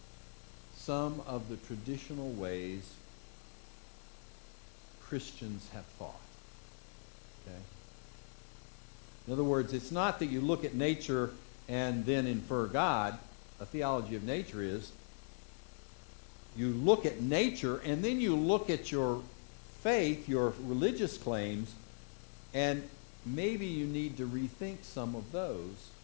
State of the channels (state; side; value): silent; right; 51 dB below the other